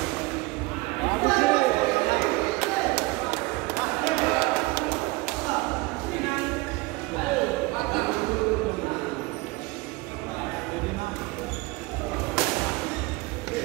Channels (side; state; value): left; quieter; 23.3 dB